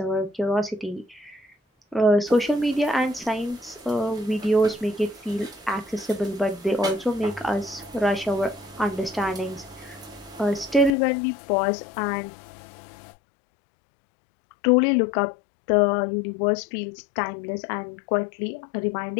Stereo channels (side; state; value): right; drops out; at 10.9 s